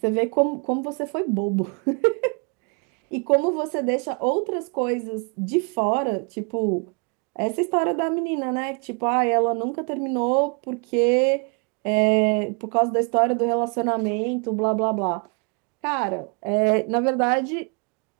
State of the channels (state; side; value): quieter; left; 36.0 dB